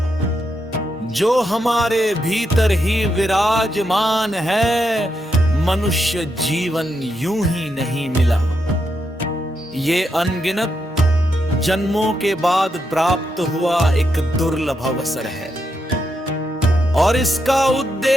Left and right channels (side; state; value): both; normal; correlation 0.82